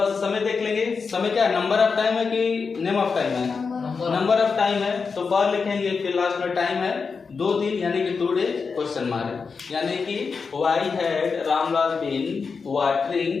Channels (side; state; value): right; quieter; 5.1 dB